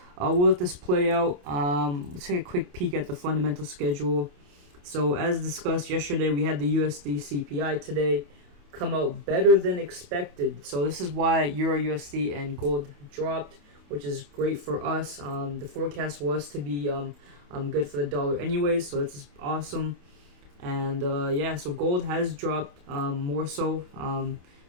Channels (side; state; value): left; late; 28 ms